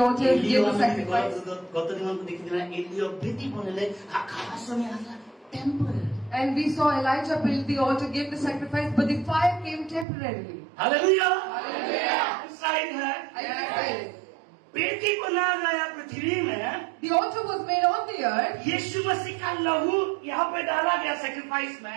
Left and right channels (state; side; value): drops out; left; at 10.1 s